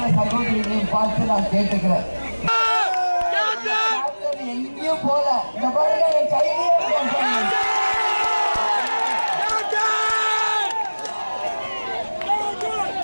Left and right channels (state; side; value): inverted; both; correlation -1.00